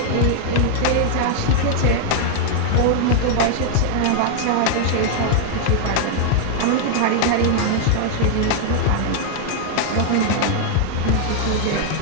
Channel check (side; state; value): both; different; correlation 0.00